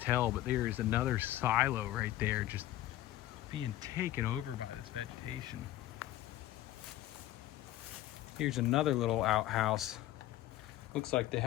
but there is another silo right there just being taken over by this vegetation. Here's another little outhouse. Looks like they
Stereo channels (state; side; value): quieter; right; 14.5 dB